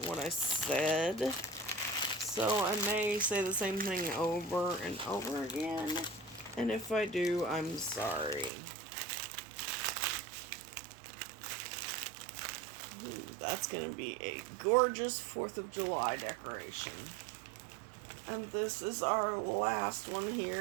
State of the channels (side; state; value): left; drops out; at 8.5 s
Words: what I said, so I may say the same thing over and over again, and if I do, I'm sorry. Ooh, that's going to be a gorgeous 4th of July decoration. And this is our last one